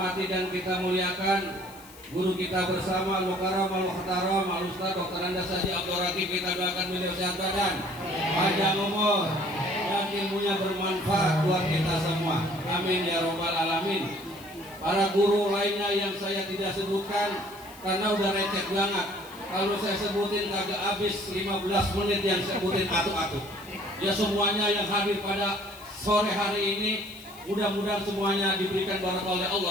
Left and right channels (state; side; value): noise; left; hiss, 21 dB below the sound